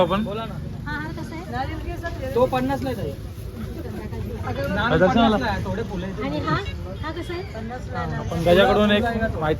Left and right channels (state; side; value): identical; both; correlation 1.00